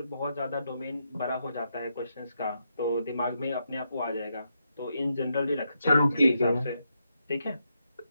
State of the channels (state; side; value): inverted; both; correlation -0.82